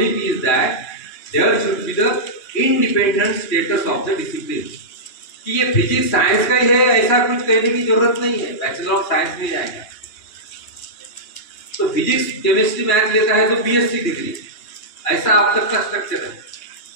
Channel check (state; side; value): late; right; 2.8 ms